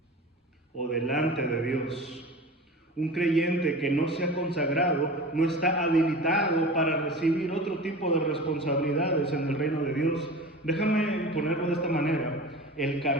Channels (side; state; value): both; normal; correlation 0.34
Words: o delante de Dios. Un creyente que no se ha consagrado no está habilitado para recibir otro tipo de responsabilidades en el reino de Dios. Déjame ponerlo de esta manera. El